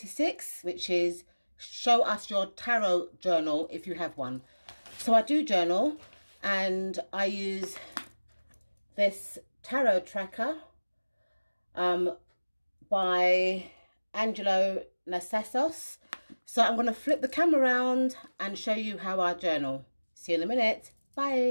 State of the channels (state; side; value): inverted; both; correlation -1.00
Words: which is show us your tarot journal if you have one. So I do journal and I use this tarot tracker by Angelo Nasios. So I'm going to flip the camera around and show you how I journal. See you in a minute.